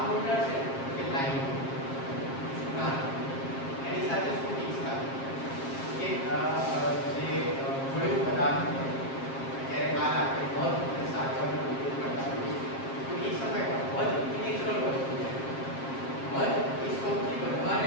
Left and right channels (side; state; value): right; late; 7.5 ms